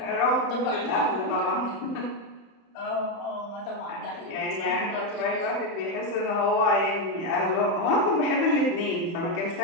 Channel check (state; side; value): late; right; 30 ms